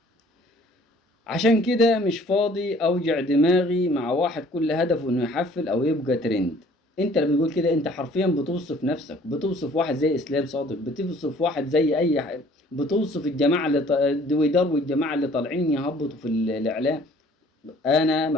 عشان كده مش فاضي أوجع دماغي مع واحد كل هدفه إنه يحفل أو يبقى ترند. أنت اللي بتقول كده أنت حرفيا بتوصف نفسك، بتوصف واحد زي إسلام صادق، بتوصف واحد زي أي حد، بتوصف الجماعة اللي دويدار والجماعة اللي طالعين يهبطوا في الإعلام. أنا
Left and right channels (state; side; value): normal; both; correlation 0.55